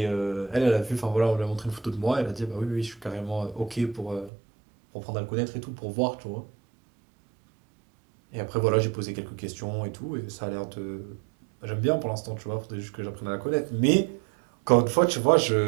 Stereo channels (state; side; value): drops out; left; at 4.3 s